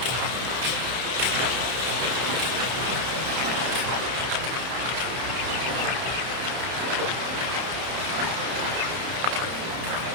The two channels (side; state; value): left; late; 31 ms